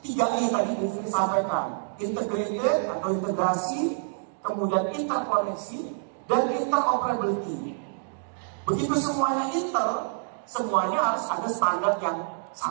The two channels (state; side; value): silent; left; digital silence